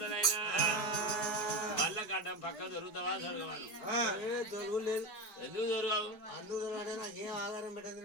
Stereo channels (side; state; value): right; late; 4.5 ms